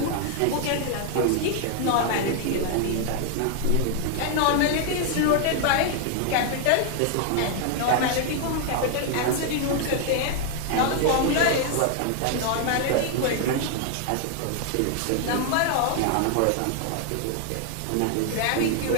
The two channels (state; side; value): different; both; correlation 0.00